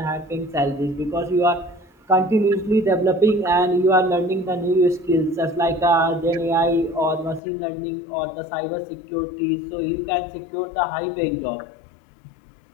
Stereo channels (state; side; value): drops out; right; at 7.4 s